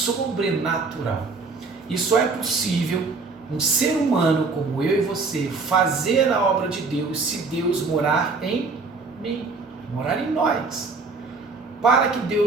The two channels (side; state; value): left; quieter; 4.1 dB